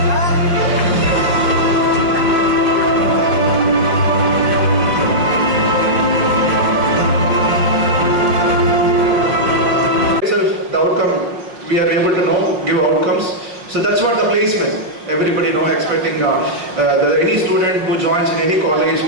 The outcome, we are able to give outcomes. So that's what the placement. Everybody expecting any student who joins in any college,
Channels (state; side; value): late; left; 5.5 ms